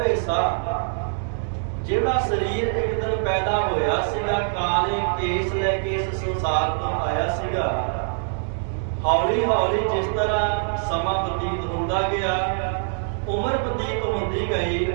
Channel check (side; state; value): left; silent; digital silence